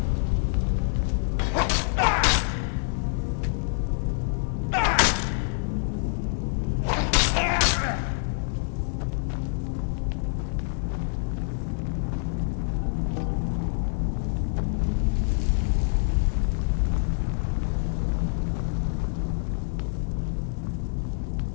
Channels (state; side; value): silent; right; digital silence